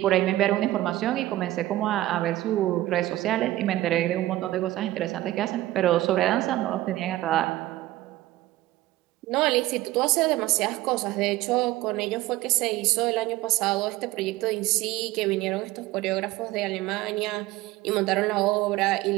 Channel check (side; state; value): left; quieter; 16.3 dB